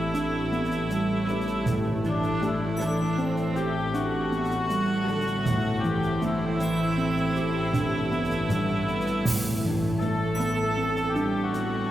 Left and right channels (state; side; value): normal; both; correlation 0.89